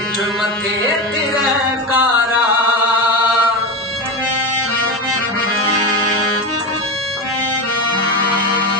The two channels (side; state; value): both; normal; correlation 0.18